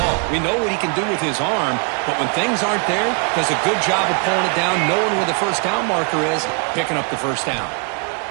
all. We know what he can do with his arm, but when things aren't there, does a good job of pulling it down, knowing where the first down marker is, picking up the first down.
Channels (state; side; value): quieter; left; 38.6 dB